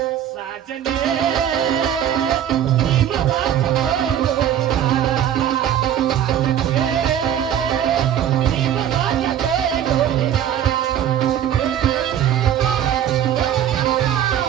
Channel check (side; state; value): left; quieter; 10.2 dB